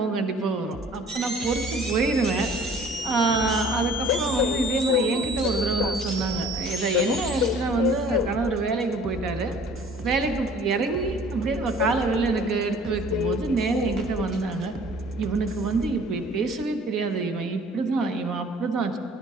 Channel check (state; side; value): normal; both; correlation 0.51